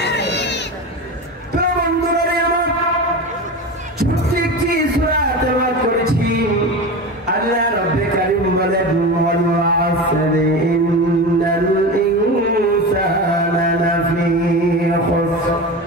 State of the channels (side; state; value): both; normal; correlation 0.26